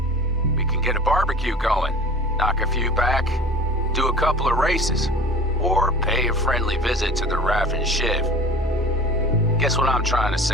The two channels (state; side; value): normal; both; correlation 0.41